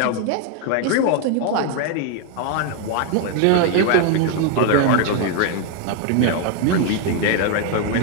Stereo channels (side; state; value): both; different; correlation 0.00